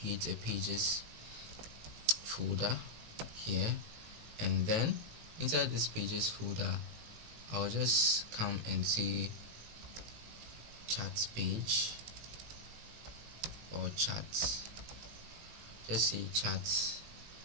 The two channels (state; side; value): late; left; 18 ms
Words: a pages folder here, and then inside this pages folder I'll just come and say chat page or chat, just say chat,